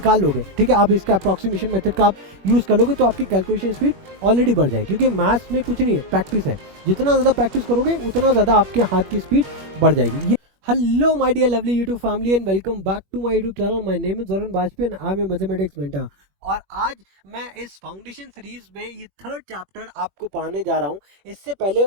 लोगे, ठीक है, आप इसका अप्रॉक्सीमेशन मेथड का आप यूज़ कर लोगे तो आपकी कैलकुलेशन स्पीड ऑलरेडी बढ़ जाएगी। क्योंकि मैथ्स में कुछ नहीं है, प्रैक्टिस है। जितना ज़्यादा प्रैक्टिस करोगे उतना ज़्यादा आपके हाथ की स्पीड बढ़ जाएगी। Hello my dear lovely YouTube family and welcome back to my YouTube channel. My name is Varun Bajpayee and I'm a mathematics mentor. और आज मैं इस फाउंडेशन सीरीज में ये 3rd चैप्टर आपको पढ़ाने जा रहा हूँ। इससे पहले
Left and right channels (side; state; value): left; late; 21 ms